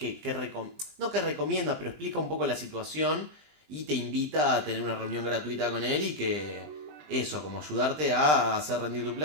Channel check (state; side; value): late; left; 20 ms